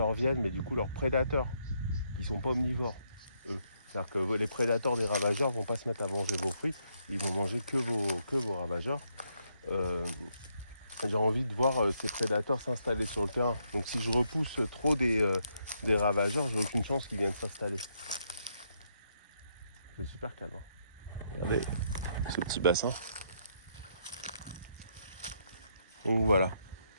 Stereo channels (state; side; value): inverted; both; correlation -0.76